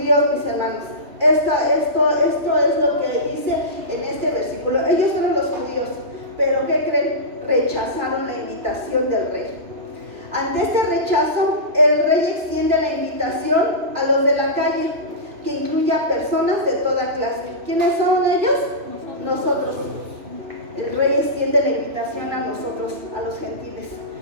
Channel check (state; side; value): late; left; 2.9 ms